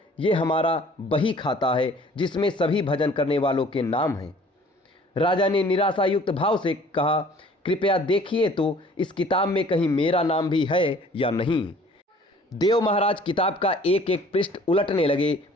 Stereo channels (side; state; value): both; normal; correlation 0.52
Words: ये हमारा बही खाता है जिसमें सभी भजन करने वालों के नाम हैं। राजा ने निराशायुक्त भाव से कहा, कृपया देखिए तो इस किताब में कहीं मेरा नाम भी है या नहीं। देव महाराज किताब का एक एक पृष्ठ उलटने लगे